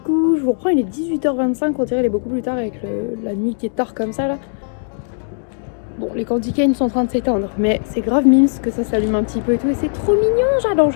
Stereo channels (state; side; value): silent; right; digital silence